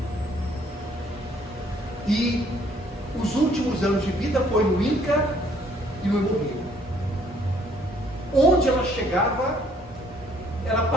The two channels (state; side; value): normal; both; correlation 0.63